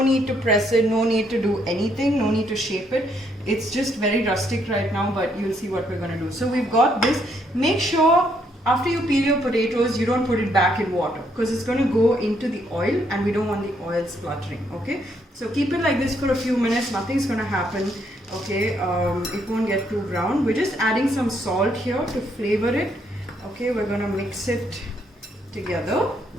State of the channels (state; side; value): normal; both; correlation 0.72